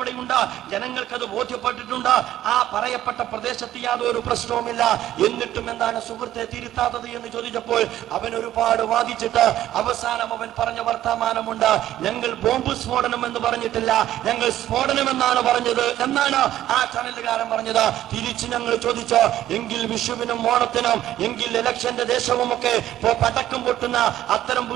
ജനങ്ങൾക്കത് ബോധ്യപ്പെട്ടിട്ടുണ്ട്. ആ പറയപ്പെട്ട പ്രദേശത്ത് യാതൊരു പ്രശ്നവുമില്ല. എന്നിട്ടും എന്താണ് സുഹൃത്തെ തിരുത്താത്തത് എന്ന് ചോദിച്ചപ്പോൾ അവൻ ഒരുപാട് വാദിച്ചിട്ട് അവസാനം അവൻ പറഞ്ഞ വർത്തമാനമുണ്ട്, ഞങ്ങൾ ബോംബ് സ്ഫോടനം എന്ന് പറഞ്ഞിട്ടില്ല, ഞങ്ങൾ സ്ഫോടനം എന്നാണ് പറഞ്ഞത് എന്നാണ് ആ ചാനലുകാരൻ പറഞ്ഞത്. തിരിച്ച് ഞങ്ങൾ ചോദിച്ചോ, എങ്കിൽ വിഷുവിനും ഓണത്തിനും, എങ്കിൽ ഇലക്ഷന്റെ ദേശവും ഒക്കെ പടക്കം പൊട്ടുന്ന അത്തരം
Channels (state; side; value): quieter; left; 12.9 dB